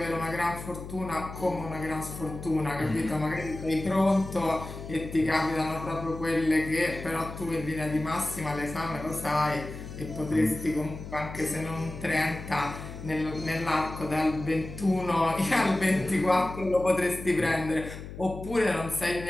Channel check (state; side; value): noise; left; hum, 11 dB below the sound